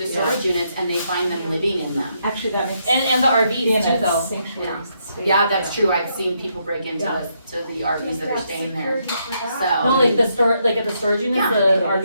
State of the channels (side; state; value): both; inverted; correlation -0.77